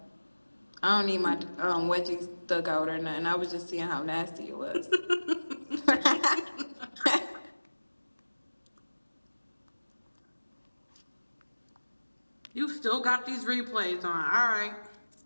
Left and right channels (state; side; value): inverted; both; correlation -1.00